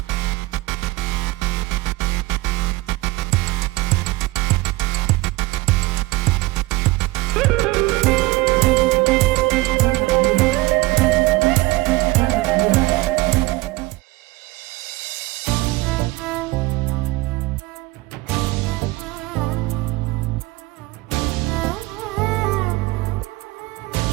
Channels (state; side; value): quieter; left; 20.8 dB